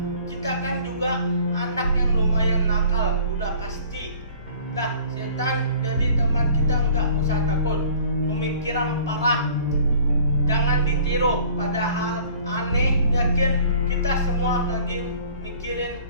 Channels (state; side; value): inverted; both; correlation -0.50